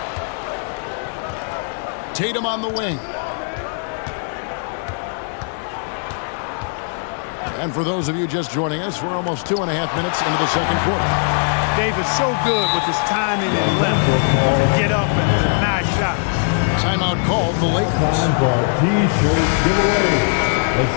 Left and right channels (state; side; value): silent; right; 60 dB below the other